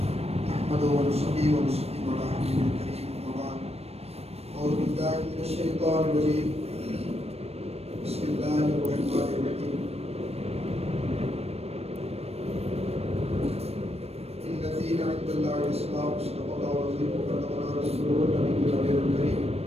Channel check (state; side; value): late; left; 0.30 ms